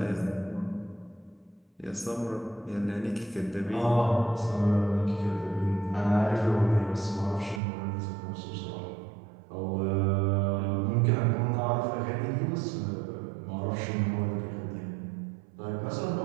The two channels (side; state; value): left; drops out; at 7.6 s